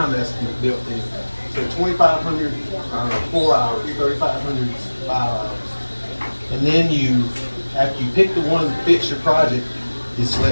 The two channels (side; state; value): both; inverted; correlation -1.00